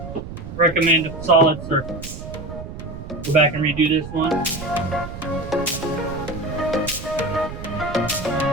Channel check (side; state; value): right; noise; rumble, 10 dB below the sound